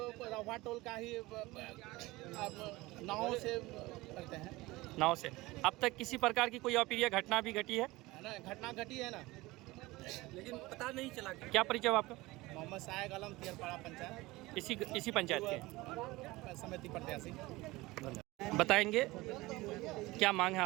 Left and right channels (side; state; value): left; quieter; 20.5 dB